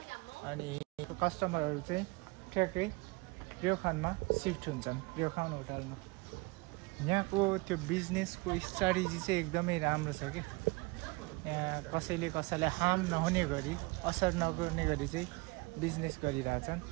अनि कस्टमरहरू चाहिँ ठ्याक्कै रेउखानमा सिफ्ट हुन्छन्, रेउखान होटलमा। यहाँको त्यो बिजनेसको स्ट्राटेजी चाहिँ एकदमै राम्रो छ कि यहाँ कसैले कसैलाई हार्म नहुने गरी, असर नगर्ने गरी चाहिँ बिजनेस गरिरहेछन्।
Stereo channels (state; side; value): quieter; left; 25.8 dB